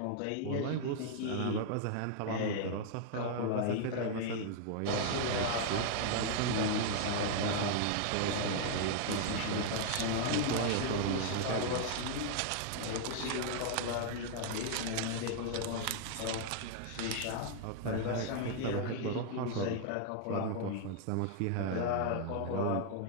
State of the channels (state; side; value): different; both; correlation 0.00